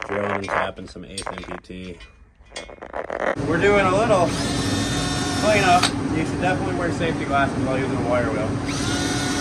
Drilling and tapping some 8th MPT. We're doing a little cleanup. You should definitely wear safety glasses while using a wire wheel.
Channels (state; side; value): identical; both; correlation 1.00